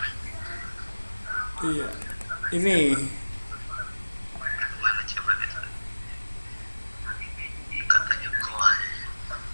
Iya, ini Mana coba gitu. Katanya kuat.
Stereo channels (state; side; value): inverted; both; correlation -1.00